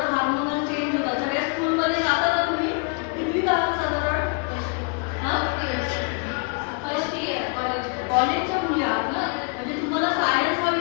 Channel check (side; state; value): right; quieter; 37.8 dB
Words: हार्मोनल चेंज होतात. सगळ्या स्कूलमध्ये जाता का तुम्ही? किती आहात साधारण? फर्स्ट इयर कॉलेजच्या मुली आहात ना. म्हणजे तुम्हाला सायन्स हा